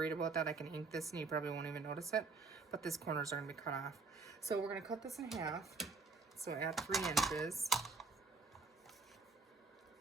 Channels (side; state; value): left; quieter; 4.2 dB